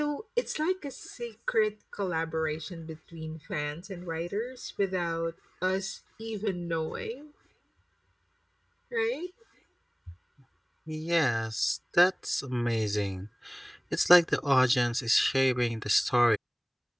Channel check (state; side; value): identical; both; correlation 1.00